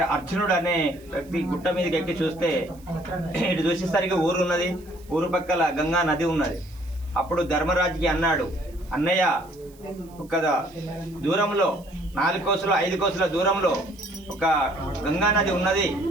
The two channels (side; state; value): right; noise; hiss, 27 dB below the sound